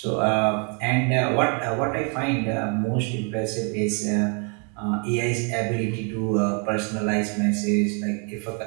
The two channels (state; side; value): quieter; left; 37.3 dB